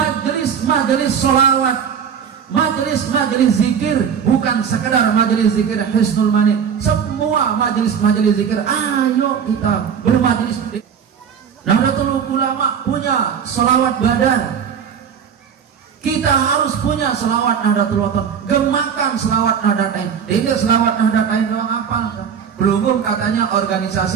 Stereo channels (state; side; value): quieter; left; 7.4 dB